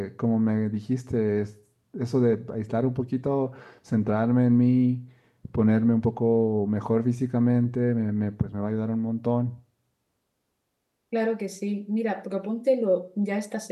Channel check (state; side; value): identical; both; correlation 1.00